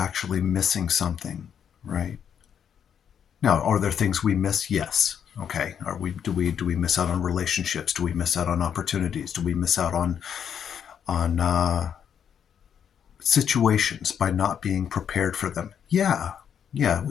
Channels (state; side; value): quieter; right; 8.3 dB